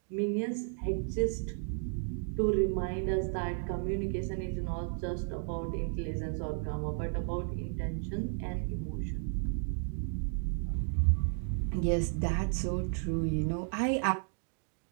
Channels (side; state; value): left; silent; 55 dB below the other